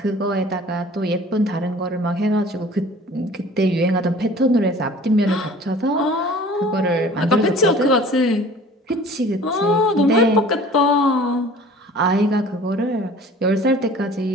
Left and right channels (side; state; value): both; normal; correlation 0.47